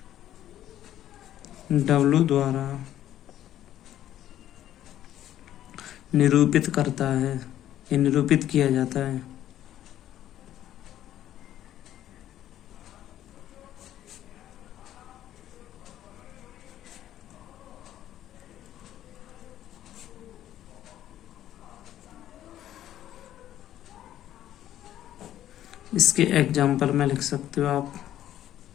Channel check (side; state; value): right; quieter; 12.1 dB